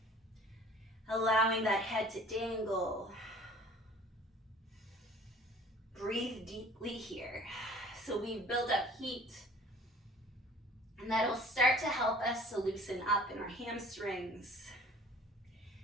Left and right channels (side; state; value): both; normal; correlation 0.49